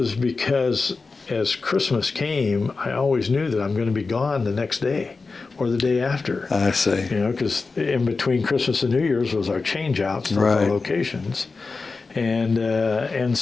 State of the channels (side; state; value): right; quieter; 4.1 dB